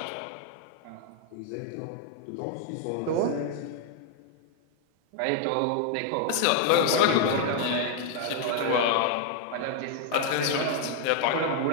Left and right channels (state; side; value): different; both; correlation 0.00